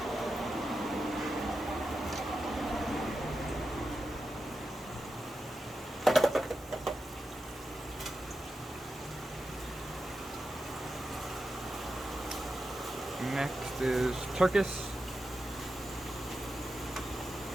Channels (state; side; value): normal; both; correlation 0.89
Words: Next is Turkish.